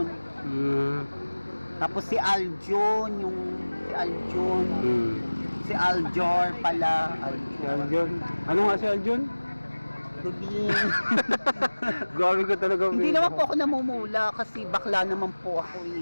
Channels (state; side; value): inverted; both; correlation -1.00